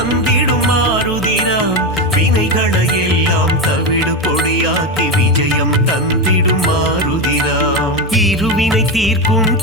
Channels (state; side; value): normal; both; correlation 0.14